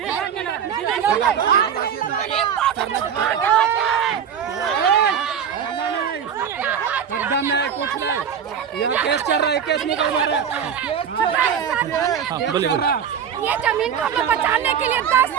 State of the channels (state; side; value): quieter; left; 8.0 dB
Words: एकदम नहीं कुछ नहीं यहाँ केस चल रहा है केस निकलवा रहा है ये जमीन को हमें बचाने के लिए 10